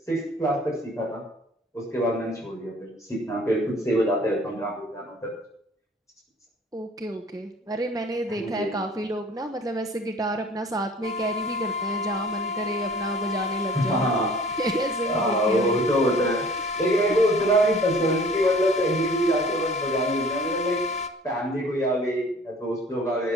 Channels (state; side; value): normal; both; correlation 0.50